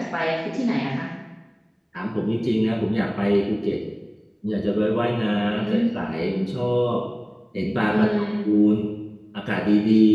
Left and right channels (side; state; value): both; identical; correlation 1.00